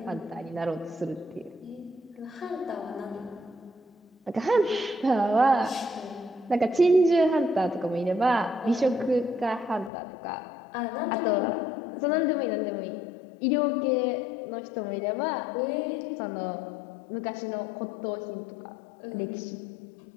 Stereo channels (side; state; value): right; drops out; at 9.9 s